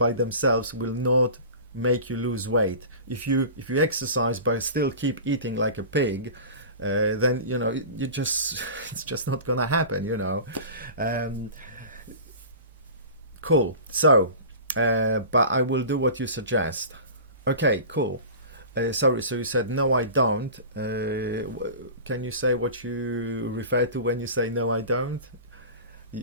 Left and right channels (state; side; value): inverted; both; correlation -0.36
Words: themselves will not make you lose weight. If you exercise but still keep eating like a pig, then you know you just it's just not gonna happen. You know. Um, cool. So, but I will do what you suggest. Okay. Cool. Sorry. So you said no, I don't. Can you say what you refer to when you say no, I don't?